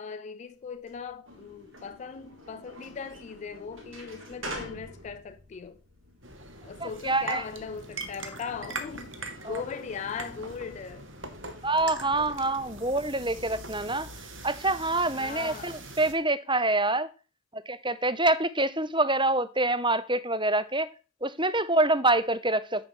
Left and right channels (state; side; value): normal; both; correlation 0.12